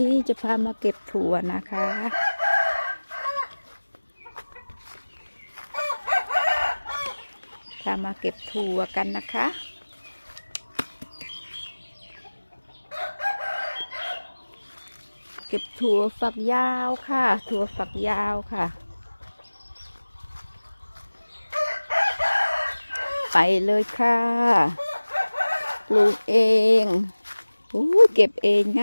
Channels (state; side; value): inverted; both; correlation -1.00